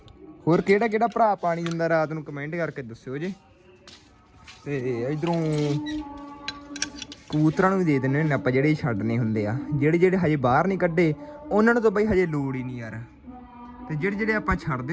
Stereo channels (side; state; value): both; identical; correlation 1.00